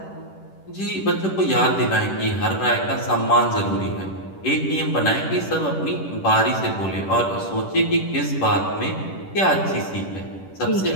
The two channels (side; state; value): right; late; 10 ms